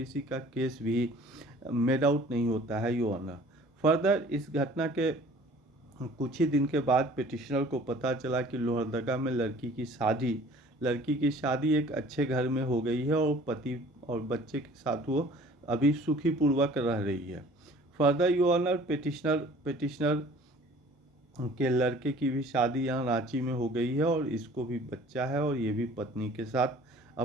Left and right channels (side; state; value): both; normal; correlation 0.50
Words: का केस भी मेड आउट नहीं होता है। यो ऑनर, फर्दर इस घटना के कुछ ही दिन के बाद पिटिशनर को पता चला कि लोहरदगा में लड़की की शादी एक अच्छे घर में हो गई है, और पति और बच्चे के साथ वो अभी सुखी पूर्वक रह रही है। फर्दर यो ऑनर, पिटिशनर के लड़के की भी शादी यहाँ रांची में हो गई है, और इसको भी बच्चा है, और ये भी पत्नी के साथ